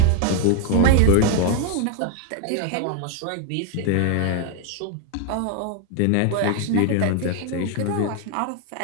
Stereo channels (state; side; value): different; both; correlation 0.01